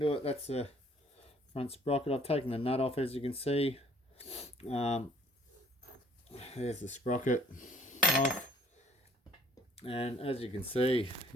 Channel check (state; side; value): normal; both; correlation 0.57